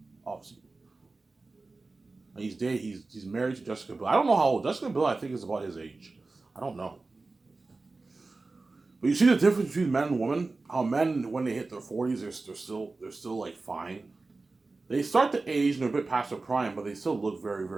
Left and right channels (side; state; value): left; quieter; 3.6 dB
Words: Obviously. And he's married to Jessica Biel. I don't know how old Jessica Biel. I think is about his age. I don't know. But you see the difference between men and women. How men, when they hit their 40s, they're still like fine. They start to age and they're a bit past their prime, but they still look very,